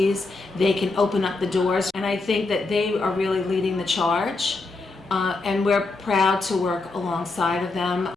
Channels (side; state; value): right; quieter; 3.5 dB